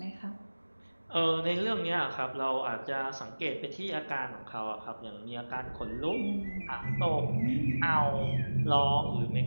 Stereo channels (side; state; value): both; inverted; correlation -1.00